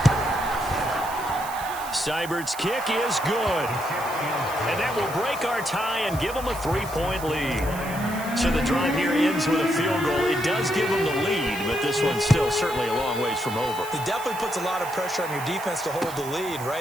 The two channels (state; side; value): noise; right; hiss, 14 dB below the sound